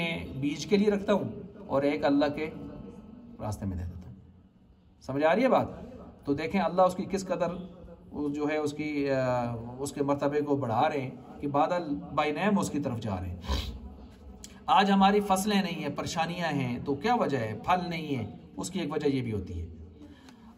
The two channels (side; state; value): both; identical; correlation 1.00